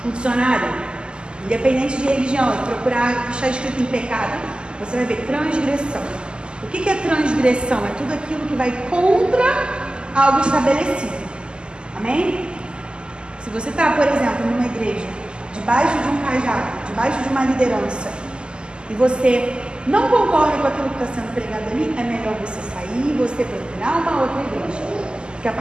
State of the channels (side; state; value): left; late; 0.048 ms